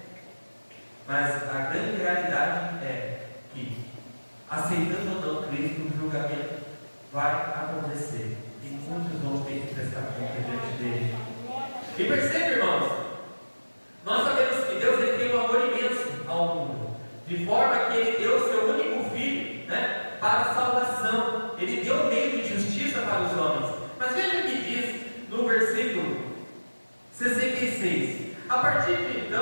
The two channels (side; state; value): both; inverted; correlation -1.00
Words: Mas a grande realidade é que, aceitando ou não Cristo, o julgamento vai acontecer. E muitos vão ter que prestar conta diante dele. E percebe, irmãos, nós sabemos que Deus ele tem um amor imenso ao mundo, de forma que ele deu o seu único filho, né, para a salvação. Ele deu um meio de justiça para os homens. Mas veja o que diz no versículo 66. A partir de